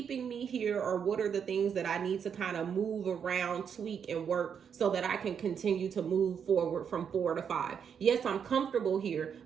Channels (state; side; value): quieter; left; 7.4 dB